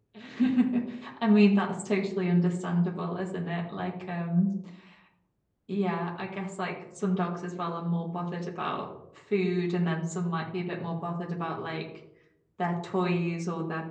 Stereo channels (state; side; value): identical; both; correlation 1.00